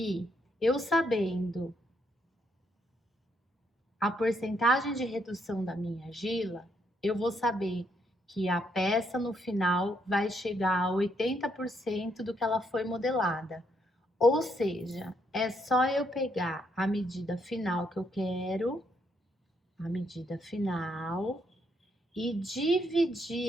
eu sabendo a porcentagem de redução da minha argila, eu vou saber que a peça no final vai chegar a 80% do que ela foi modelada. Ou seja, é só eu pegar a medida final que eu quero, a medida final, e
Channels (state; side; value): normal; both; correlation 0.75